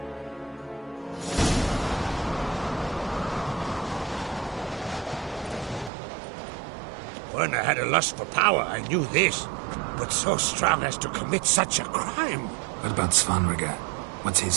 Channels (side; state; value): left; drops out; at 5.9 s